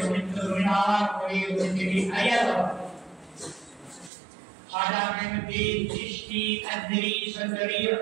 জমিনার করে জমিতে আয়াত Ada Ahmadi Chishti Adri Sandari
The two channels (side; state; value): left; drops out; at 4.1 s